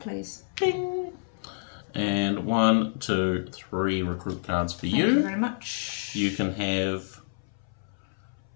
please. Ding. And 1, 2, 3 recruit cards for Thank you very much. You can have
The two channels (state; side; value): silent; right; 59 dB below the other